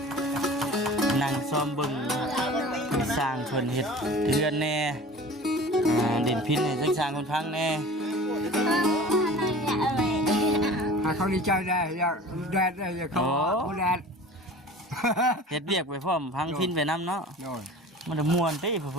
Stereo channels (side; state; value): both; normal; correlation 0.40